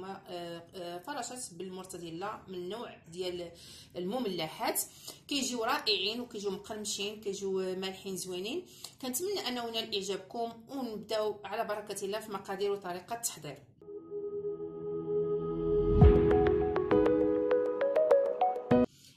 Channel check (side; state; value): both; identical; correlation 1.00